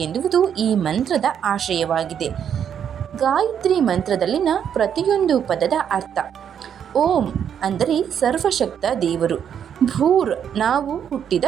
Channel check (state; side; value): quieter; left; 8.5 dB